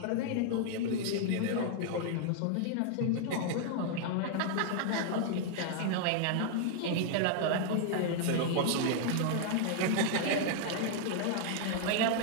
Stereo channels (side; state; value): both; different; correlation 0.00